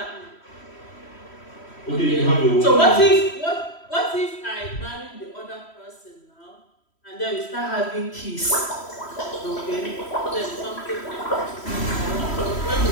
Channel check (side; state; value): right; late; 3.1 ms